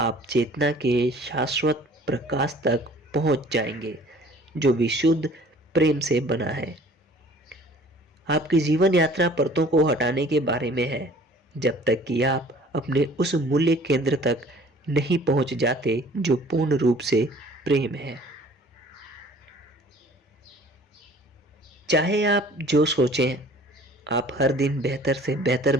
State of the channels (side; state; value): both; normal; correlation 0.51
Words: चेतना के शाश्वत प्रकाश तक पहुंच जाएंगे, जो विशुद्ध प्रेम से बना है। आपकी जीवन यात्रा परतों को हटाने के बारे में है, जब तक कि आप अपने उस मूल्य केंद्र तक नहीं पहुंच जाते जो पूर्ण रूप से प्रेम है। चाहे आप जो सोचें, आप हर दिन बेहतर से बेहतर